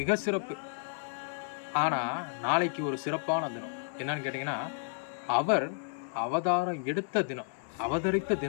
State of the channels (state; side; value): silent; right; 57 dB below the other